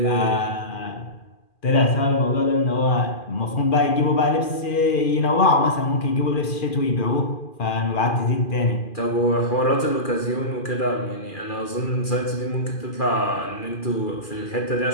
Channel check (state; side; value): late; right; 2.4 ms